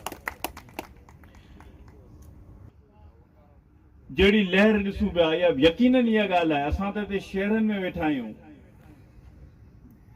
जहिड़ी लहर ॾिसूं पिया, इहा यकीनन इहा ॻाल्हि आहे। असां त हिते शहरनि में वेठा आहियूं,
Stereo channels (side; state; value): both; identical; correlation 1.00